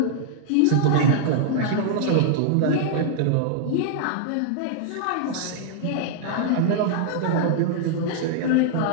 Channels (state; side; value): different; both; correlation -0.01